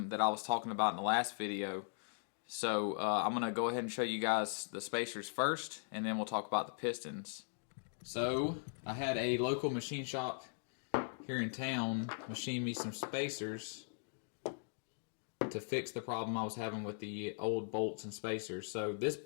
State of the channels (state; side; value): silent; right; digital silence